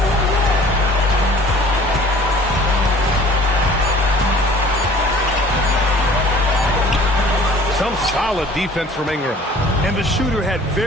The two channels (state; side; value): normal; both; correlation 0.50